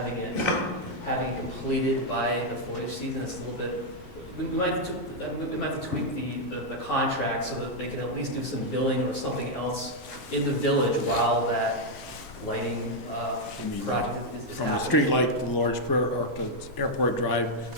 it completed by the foliage season is a little bit, we might have to tweak the contract so that they can at least do some billing or something else in the village while that lighting project is From the happening. street light to the large or to Airport Drive,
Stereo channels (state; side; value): normal; both; correlation -0.01